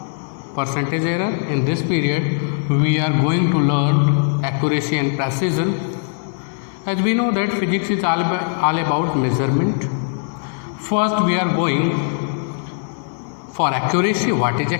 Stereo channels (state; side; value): silent; right; digital silence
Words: percentage error. In this period, we are going to learn accuracy and precision. As we know that physics is all about measurement. First, we are going for accuracy. What is